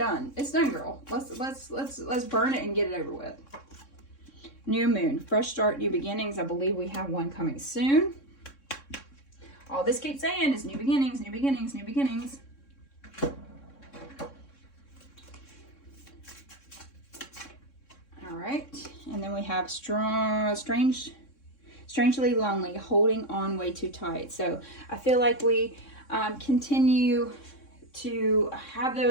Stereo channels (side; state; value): right; late; 3.6 ms